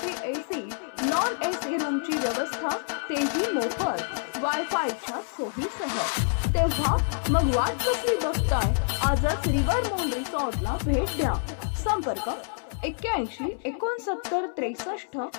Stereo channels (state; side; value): silent; right; 60 dB below the other